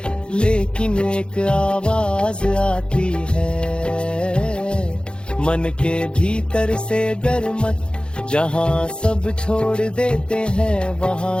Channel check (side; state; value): right; late; 0.053 ms